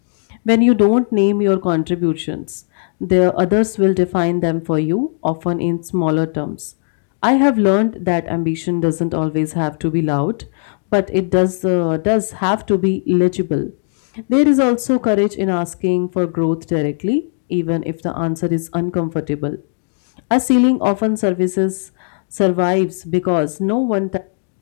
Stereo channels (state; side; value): silent; right; 68 dB below the other